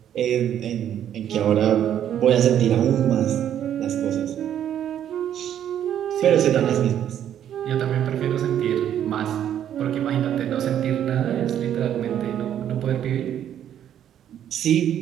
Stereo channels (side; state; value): left; quieter; 10.2 dB